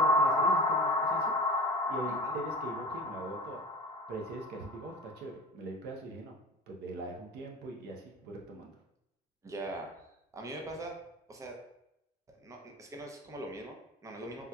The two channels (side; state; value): both; normal; correlation 0.35